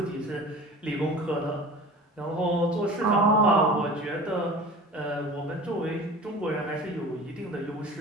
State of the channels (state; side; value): normal; both; correlation 0.39